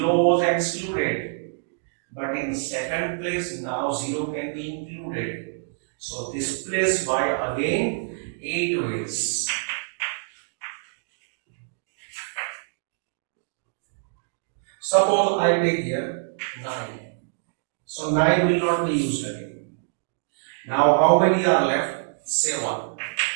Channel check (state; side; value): silent; left; digital silence